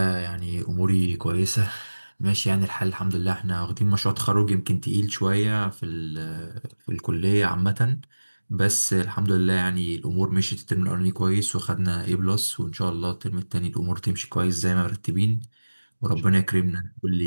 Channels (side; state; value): both; inverted; correlation -1.00